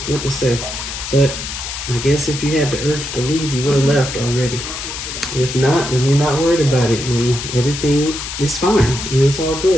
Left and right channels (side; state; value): left; noise; hiss, 7 dB below the sound